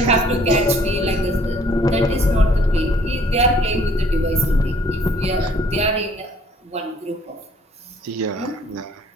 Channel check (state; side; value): normal; both; correlation 0.59